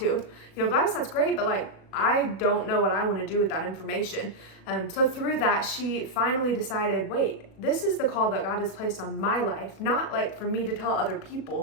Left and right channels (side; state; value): right; late; 37 ms